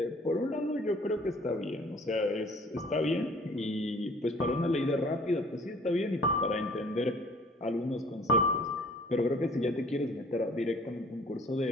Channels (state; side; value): normal; both; correlation 0.53